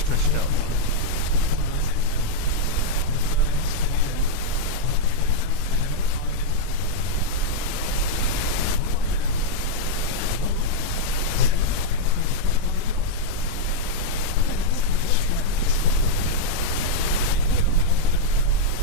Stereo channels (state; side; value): different; both; correlation -0.03